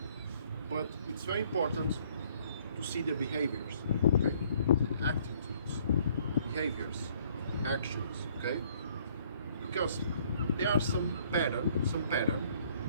But it's very important to see the behaviors, okay? The attitudes, behaviors, actions, okay? Because there are some pattern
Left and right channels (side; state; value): both; inverted; correlation -0.62